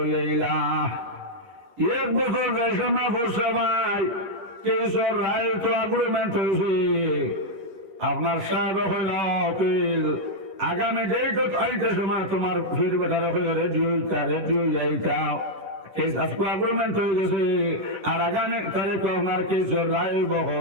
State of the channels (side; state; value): left; late; 11 ms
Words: 1 বছর রেশনা বসে ভাই কেসর রায় তো এগ্রিমেন্ট হয়েছে আপনার সাহেব হইল অপিল আগামী ডেট আইতে সময় তোমার ফির বেটার রেডিও যাইতা কেস আজকে এগ্রিমেন্ট হয়ে গেছে আর আগামী তারিখ আপনার কেসের রায় বহ